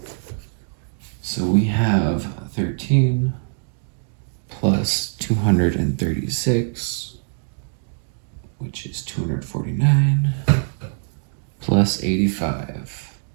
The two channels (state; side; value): silent; left; 57 dB below the other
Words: So we have 13 plus 236, which is 249, plus 85,